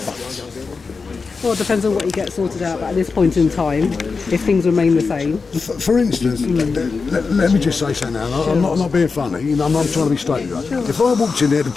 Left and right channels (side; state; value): right; quieter; 4.7 dB